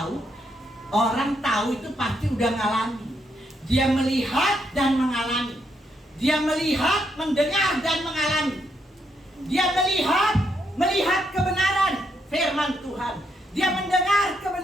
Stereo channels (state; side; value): normal; both; correlation 0.77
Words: Orang tahu itu pasti udah ngalami. Dia melihat dan mengalami. Dia melihat, mendengar dan mengalami. Dia melihat kebenaran firman Tuhan. Dia mendengar